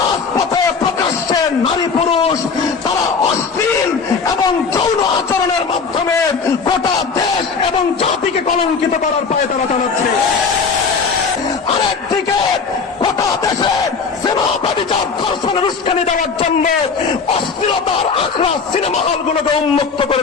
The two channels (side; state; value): right; quieter; 5.3 dB